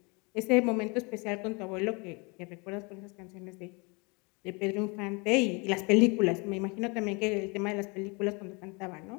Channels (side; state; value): right; quieter; 29.6 dB